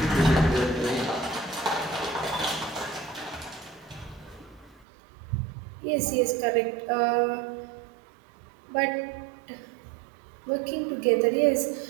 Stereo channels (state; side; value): drops out; left; at 4.9 s